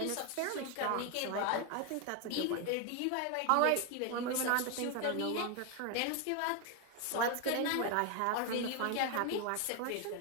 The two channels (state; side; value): different; both; correlation 0.01